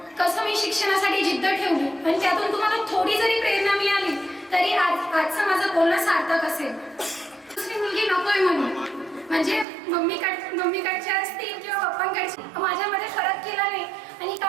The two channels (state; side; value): drops out; left; at 9.7 s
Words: कसं मी शिक्षणासाठी जिद्द ठेवली आणि त्यातून तुम्हाला थोडी जरी प्रेरणा मिळाली तरी आजचं माझं बोलणं सार्थक असेल. दुसरी मुलगी नकोय म्हणून, म्हणजे मम्मीकडच्या असतील किंवा पप्पांकडची, माझ्यामध्ये फरक केला नाही आणि